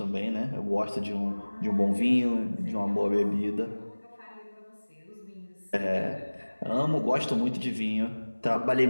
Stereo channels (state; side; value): inverted; both; correlation -1.00